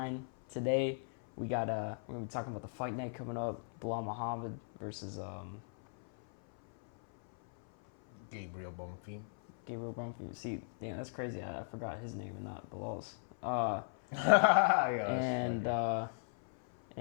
Today we're gonna be talking about the fight night coming up. Bilal Muhammad versus Gabriel Bonfim. Gabriel Brumfield. See, damn, that's crazy. I forgot his name and not Bilal's. Uh, Yeah,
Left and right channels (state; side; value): silent; right; 53 dB below the other